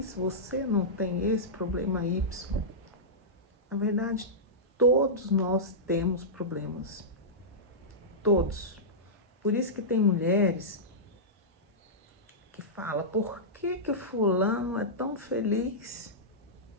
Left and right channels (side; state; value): both; normal; correlation -0.14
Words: você não tem esse problema Y. Na verdade, todos nós temos problemas. Todos. Por isso que tem mulheres que falam, por que fulano é tão feliz,